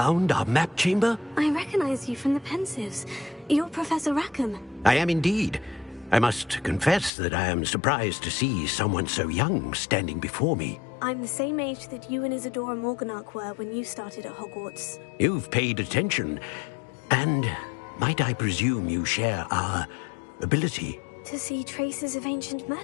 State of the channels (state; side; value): drops out; right; at 7.1 s